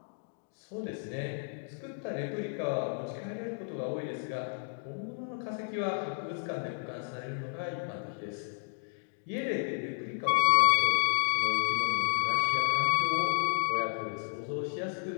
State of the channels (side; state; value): right; silent; 56 dB below the other